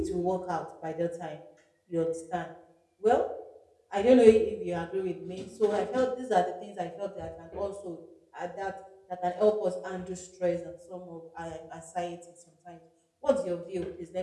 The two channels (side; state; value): both; identical; correlation 1.00